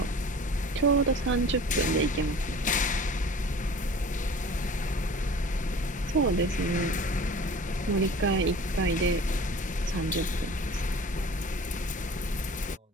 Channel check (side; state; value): both; normal; correlation 0.43